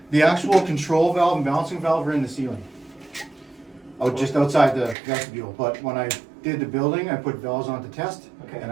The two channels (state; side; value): drops out; left; at 5.0 s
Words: The actual control valve and balancing valve are in the ceiling. Oh, just outside the vestibule. But when I did the building, I put valves on to test, Okay. and